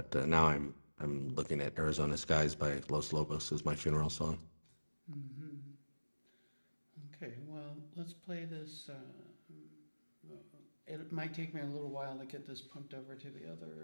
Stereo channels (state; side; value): inverted; both; correlation -1.00